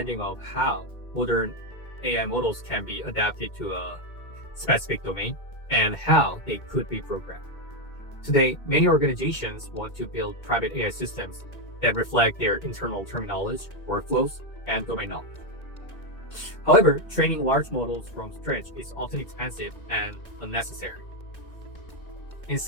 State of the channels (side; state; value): right; late; 2.2 ms